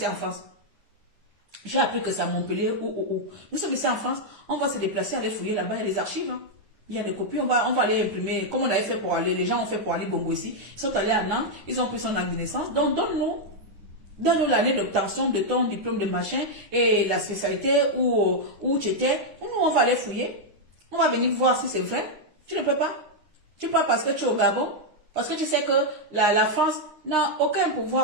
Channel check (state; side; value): late; left; 9.8 ms